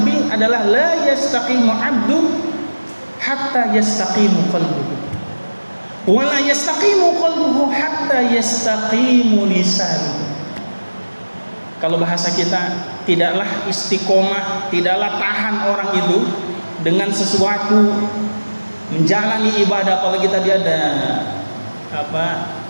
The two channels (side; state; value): both; inverted; correlation -1.00